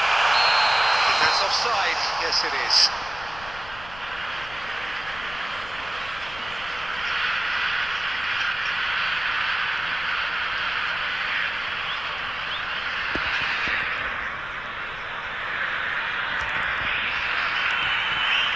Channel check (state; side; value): noise; left; rumble, 17 dB below the sound